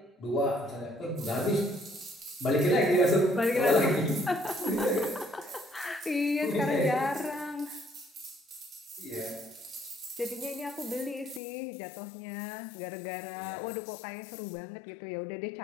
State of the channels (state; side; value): drops out; right; at 11.4 s